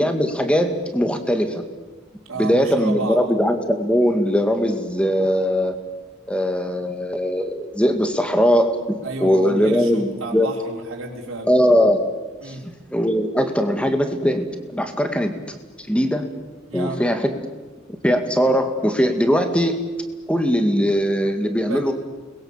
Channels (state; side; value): normal; both; correlation 0.81